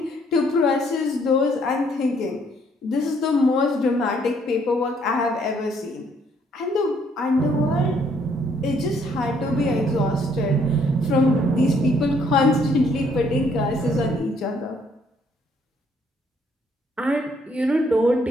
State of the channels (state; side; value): normal; both; correlation 0.67